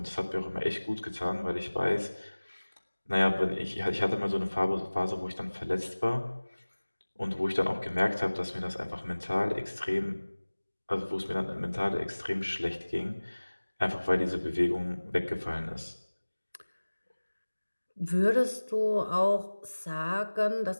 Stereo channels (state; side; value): inverted; both; correlation -1.00